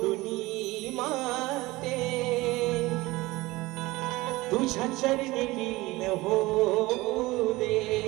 माते तुझ्या चरणी लीन होऊ दे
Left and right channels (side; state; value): left; quieter; 20.3 dB